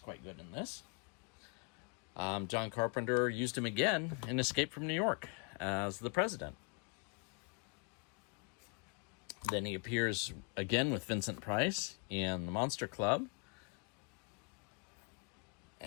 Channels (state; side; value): quieter; right; 35.6 dB